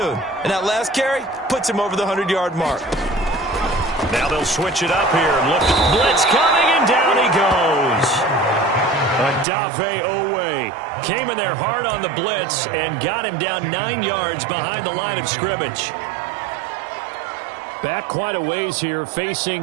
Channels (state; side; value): drops out; left; at 9.5 s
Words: And that last carry puts him over the 100-yard mark. Now they'll switch it up here and look. Blitz coming, and down he goes. Adave Owe came in there hard on the blitz and got him down 9 yards behind the line of scrimmage. Back quite a ways here,